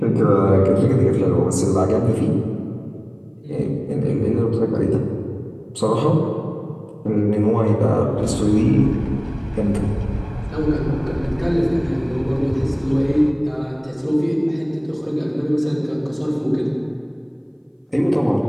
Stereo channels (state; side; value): identical; both; correlation 1.00